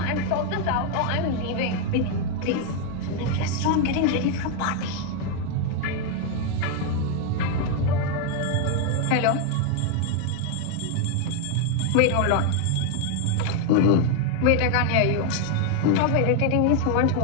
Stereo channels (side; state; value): both; different; correlation 0.00